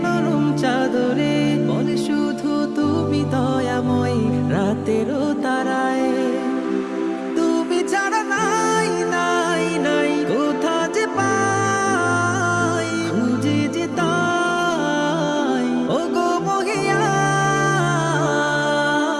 নরম চাদরে, বলে শুধু তুমি দয়াময় রাতেরও তারায়। তুমি ছাড়া নাই নাই নাই কোথা যে পাই, খুঁজে যে তাই ও গো মহিয়া।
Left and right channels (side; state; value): both; identical; correlation 1.00